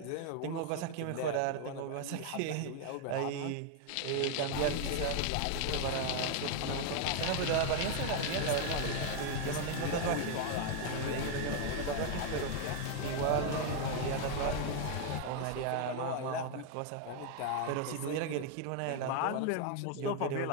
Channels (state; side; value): different; both; correlation 0.01